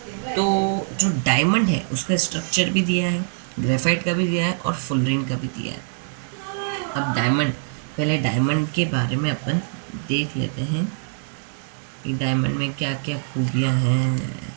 तो जो डायमंड है उसका स्ट्रक्चर भी दिया है, ग्रेफाइट का भी दिया है और फुलरीन का भी दिया है। अब डायमंड, पहले डायमंड के बारे में अपन देख लेते हैं कि डायमंड में क्या क्या खूबियाँ हैं।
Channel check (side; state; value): left; silent; digital silence